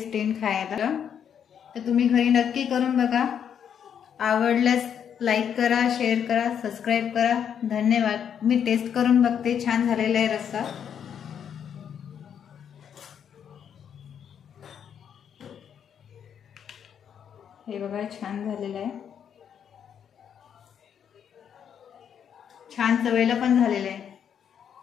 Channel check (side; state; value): right; quieter; 8.3 dB